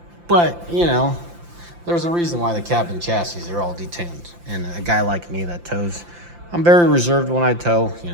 but you know, there's a reason why the cab and chassis are all detuned. And a guy like me that tows, I'm very reserved when I tow. You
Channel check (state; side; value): late; left; 5.8 ms